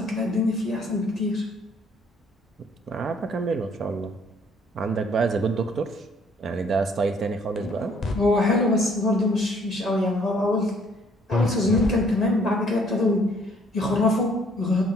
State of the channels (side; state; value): both; normal; correlation 0.62